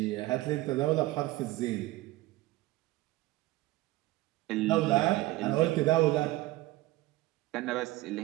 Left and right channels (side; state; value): left; quieter; 18.1 dB